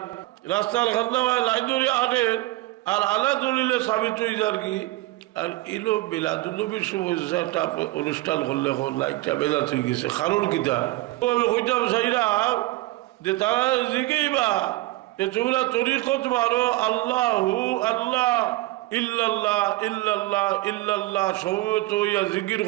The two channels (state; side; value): quieter; left; 18.9 dB